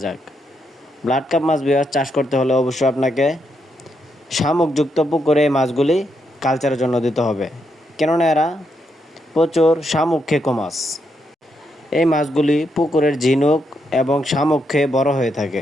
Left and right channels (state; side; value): normal; both; correlation 0.80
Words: যাক। ব্লাড কাপ মাছ চাষ করতে হলে অবশ্যই আপনাকে শামুকযুক্ত পুকুরে এই মাছগুলি কালচারের জন্য দিতে হবে, কেননা এরা প্রচুর শামুক খেকো মাছ। এই মাছগুলি পুকুরের ঝিনুক এবং শামুক খেয়ে বড় হয়ে থাকে।